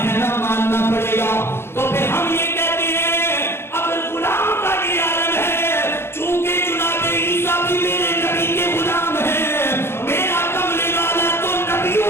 ہے نا, ماننا پڑے گا. تو پھر ہم یہ کہتے ہیں اگر غلام کا یہ عالم ہے, چونکہ جناب عیسیٰ بھی میرے نبی کے غلام ہیں, میرا کملے والا تو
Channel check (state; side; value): late; right; 0.12 ms